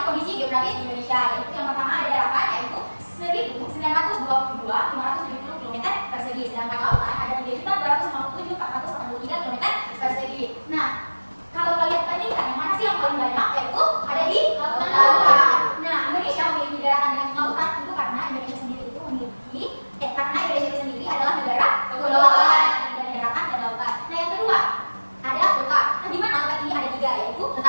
kondisi geografis di Indonesia, yaitu yang pertama ada daratan, yaitu 1.922.570 km persegi, sedangkan lautan ada 3.257.483 km persegi. Nah, kalau kalian bandingkan yang mana sih yang paling banyak, yaitu ada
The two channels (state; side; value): inverted; both; correlation -1.00